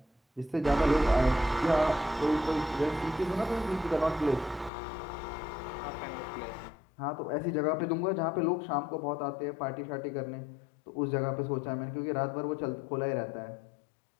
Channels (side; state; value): right; drops out; at 4.7 s